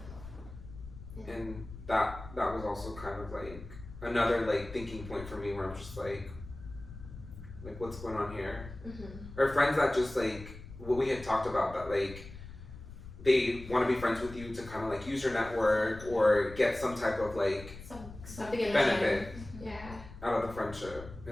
And that was also kind of like another like thinking point for me where I'm just like what's going on here? Or friends that just like what we had talked about, that like they want to be friends with you to kind of like use your network or get some type of like something in benefit Yeah. out of the friendship.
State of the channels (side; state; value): left; noise; rumble, 14 dB below the sound